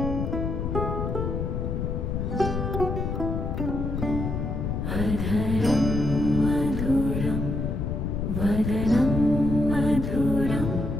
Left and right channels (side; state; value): left; noise; rumble, 2 dB below the sound